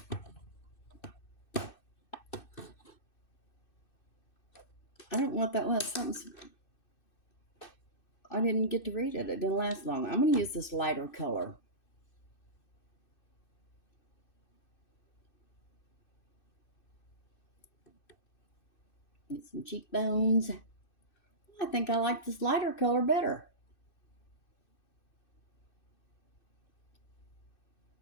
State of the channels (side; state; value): right; late; 2.6 ms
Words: I don't know what that was. I didn't get to read it. It didn't last long. I'm going to use this lighter color. Get some cheekbones. I think I like this lighter color better.